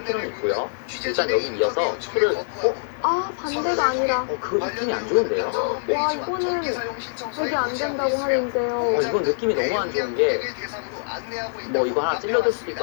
필요는 있고요. 묻는 일단 취재진의 여기 이어서 인터뷰 요청을 풀을 거부하고 아, 반대가 아니라. 그 느낌이 안 좋은데요. 한전 와, 홈페이지와 이거는 전기 사용 신청서에 이게 안 고지하고 된다고 있으며 하는데요. 이건 느낌이 너무 안 좋은 게 뭐 이거 하나 찔러줄 수도 있고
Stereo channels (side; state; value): right; silent; 63 dB below the other